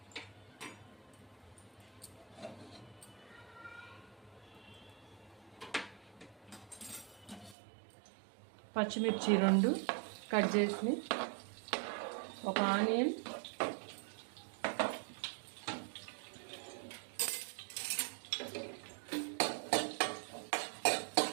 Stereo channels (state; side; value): drops out; left; at 7.6 s